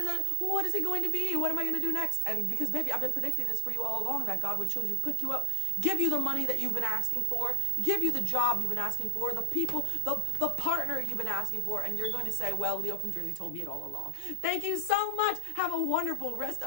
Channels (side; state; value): both; different; correlation 0.00